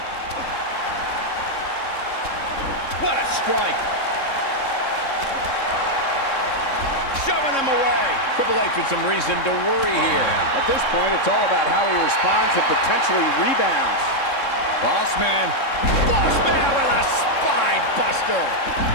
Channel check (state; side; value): late; right; 3.7 ms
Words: What a strike. Shoving them away. Triple H with some reason to worry here. At this point, it's all about how he responds and potentially rebounds. Bossman. Bossman with a spine buster.